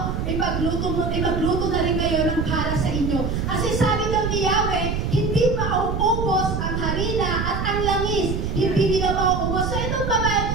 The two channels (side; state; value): right; noise; rumble, 1 dB below the sound